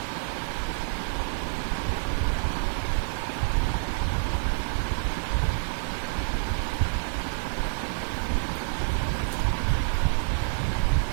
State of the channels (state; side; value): silent; left; digital silence